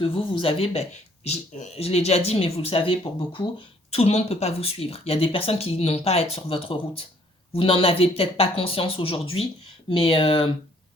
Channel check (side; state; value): both; normal; correlation 0.62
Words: vous avez, ben, je l'ai déjà dit, mais vous le savez pour beaucoup, tout le monde ne peut pas vous suivre. Il y a des personnes qui n'ont pas à être sur votre route. Vous n'en avez peut-être pas conscience aujourd'hui, mais